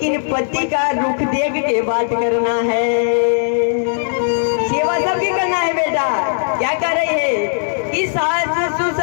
पति का रुख देख के बात करना है। सेवा सबकी करना है बेटा। क्या कर रही है कि सास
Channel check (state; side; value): silent; right; digital silence